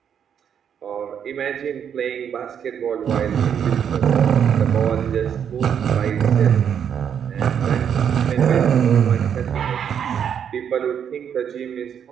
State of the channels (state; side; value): quieter; left; 8.3 dB